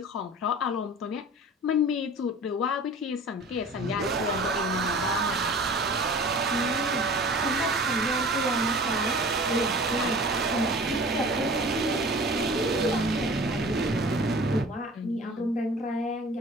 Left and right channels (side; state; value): both; normal; correlation 0.42